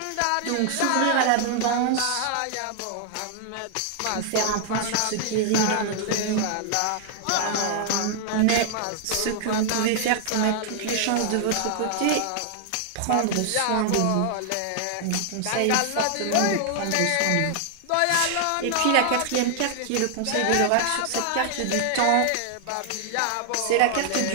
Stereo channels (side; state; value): both; different; correlation 0.00